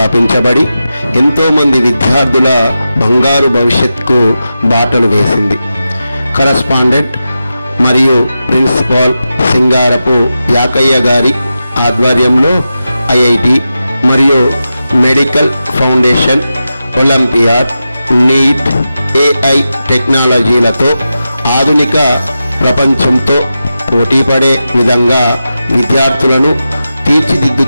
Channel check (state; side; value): inverted; both; correlation -0.91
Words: ఎంతోమంది విద్యార్థుల బంగారు భవిష్యత్తుకు బాటలు వేసింది. కరస్పాండెంట్ మరియు ప్రిన్సిపాల్ సింగారపు యాకయ్య గారి ఆధ్వర్యంలో ఐఐటి మరియు medical foundation, olympiad, NEET, AI టెక్నాలజీలతో ఆధునిక ప్రపంచంతో పోటీపడే విధంగా విద్యార్థులను